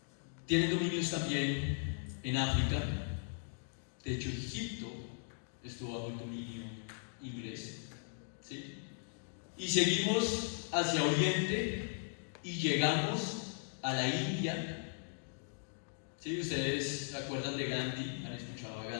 tienen dominios también en África. De hecho, Egipto estuvo bajo el dominio inglés, ¿sí? Y seguimos hacia Oriente y llegamos a la India. ¿Sí? Ustedes se acuerdan de Gandhi, han escuchado a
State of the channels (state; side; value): silent; right; digital silence